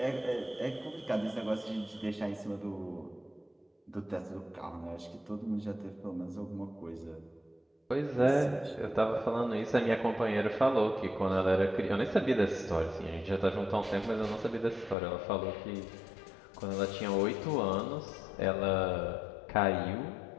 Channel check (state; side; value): drops out; right; at 15.0 s